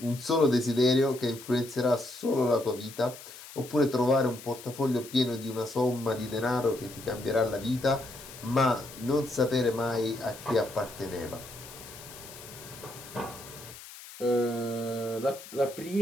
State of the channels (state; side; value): noise; left; hiss, 16 dB below the sound